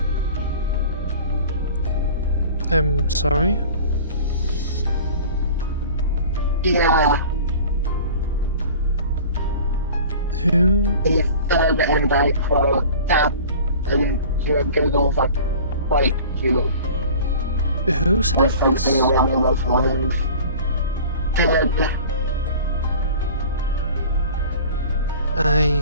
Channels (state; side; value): inverted; both; correlation -0.41